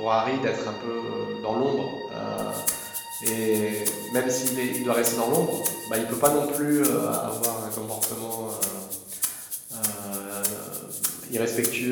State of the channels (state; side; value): identical; both; correlation 1.00